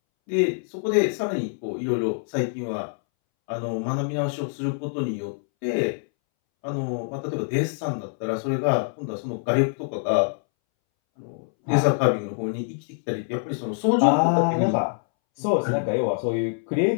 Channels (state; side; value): silent; right; 62 dB below the other